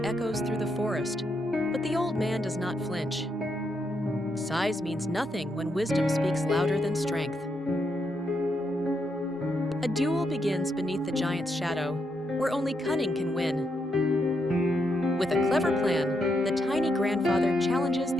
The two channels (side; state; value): both; normal; correlation 0.80